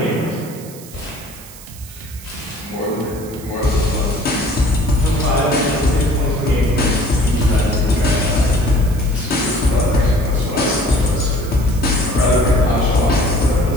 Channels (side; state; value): right; noise; hiss, 18 dB below the sound